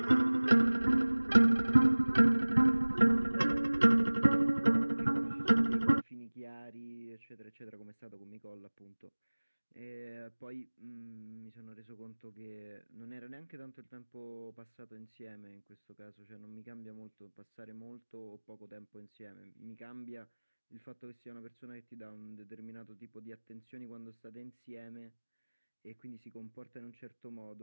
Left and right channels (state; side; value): inverted; both; correlation -1.00